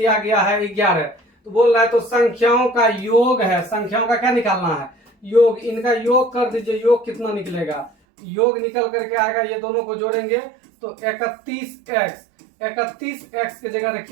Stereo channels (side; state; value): left; drops out; at 7.9 s